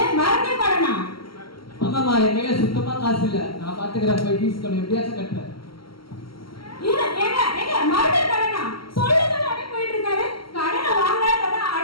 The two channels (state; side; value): late; right; 0.74 ms